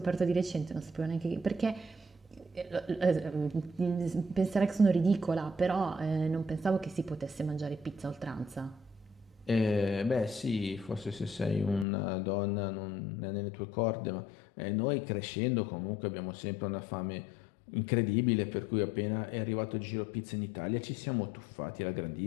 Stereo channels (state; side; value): drops out; right; at 11.9 s